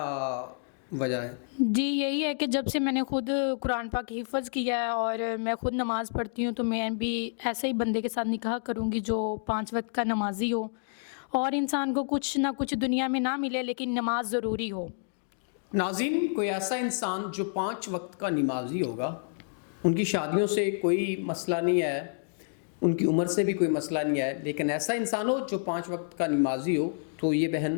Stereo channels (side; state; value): right; silent; digital silence